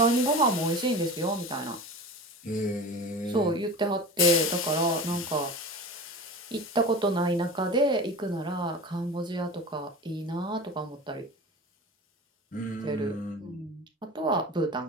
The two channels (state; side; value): normal; both; correlation 0.32